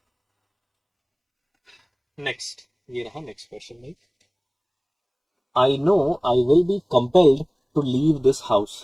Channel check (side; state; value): both; identical; correlation 1.00